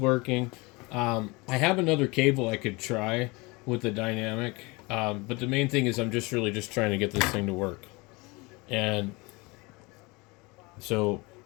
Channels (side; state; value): right; quieter; 25.4 dB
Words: I have another cable I could try with the dynamic, but the main thing is I'm just really trying to get this thing to work. And so